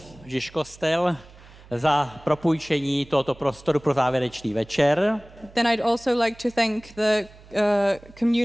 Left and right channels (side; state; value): right; noise; hum, 22 dB below the sound